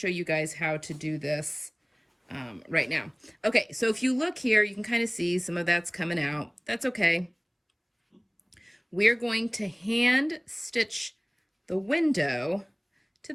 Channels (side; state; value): both; identical; correlation 1.00